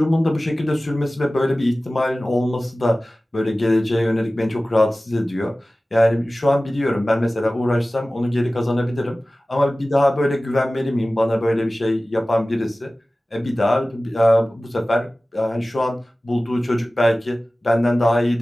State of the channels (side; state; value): both; normal; correlation 0.97